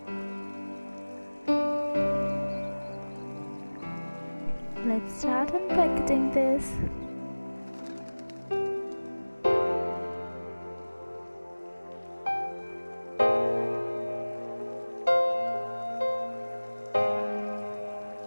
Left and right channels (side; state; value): both; inverted; correlation -1.00